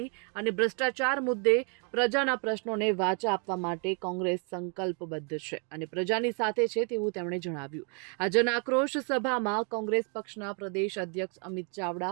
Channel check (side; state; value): left; quieter; 38.4 dB